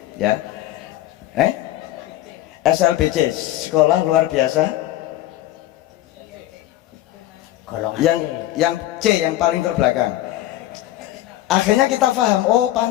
ya, SLBC, sekolah luar biasa. Yang C, yang paling terbelakang. Akhirnya kita paham, oh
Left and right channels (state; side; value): quieter; right; 14.5 dB